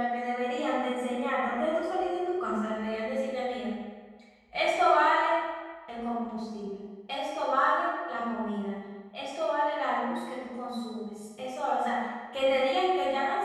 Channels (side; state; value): both; identical; correlation 1.00